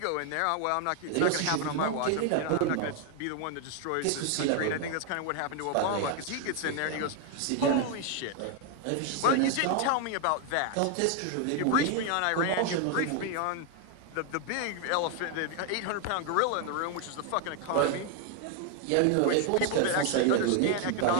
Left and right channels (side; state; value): both; different; correlation 0.01